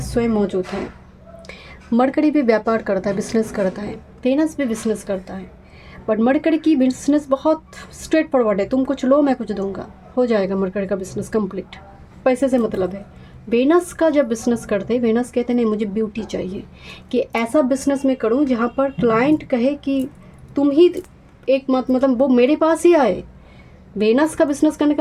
स्वयं मौजूद है। मरकरी भी व्यापार करता है, बिजनेस करता है, वेनस भी बिजनेस करता है, बट मरकरी की बिजनेस बहुत स्ट्रेट फॉरवर्ड है, तुम कुछ लो मैं कुछ दूंगा, हो जाएगा मरकरी का बिजनेस कंप्लीट, पैसे से मतलब है। वेनस का जब बिजनेस करते हैं, वेनस कहते नहीं मुझे ब्यूटी चाहिए, कि ऐसा बिजनेस मैं करूँ जहाँ पर क्लाइंट कहे कि तुम ही एक मतलब वो मेरे पास ही आए। वेनस का बिजनेस करने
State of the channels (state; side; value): identical; both; correlation 1.00